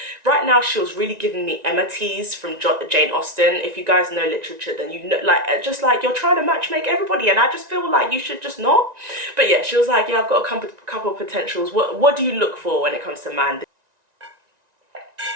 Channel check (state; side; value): late; left; 1.9 ms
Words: Right now she was really giving me Emma Tease from Jane Austen. If you guys know literature, then you know, like, just like, you're trying to matchmake everybody, and I just feel like you should just not. But yeah, she was like, yeah, I've got a couple of potentials. What do you look for when it comes to man?